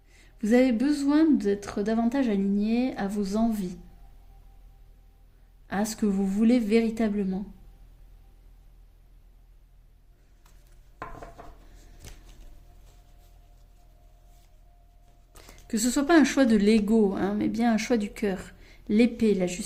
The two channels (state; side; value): identical; both; correlation 1.00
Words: Vous avez besoin d'être davantage aligné à vos envies, à ce que vous voulez véritablement. Que ce ne soit pas un choix de l'ego, hein, mais bien un choix du cœur. L'épée, la